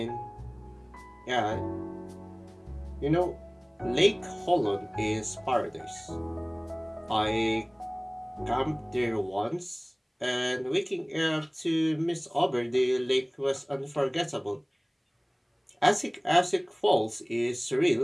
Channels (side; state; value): both; identical; correlation 1.00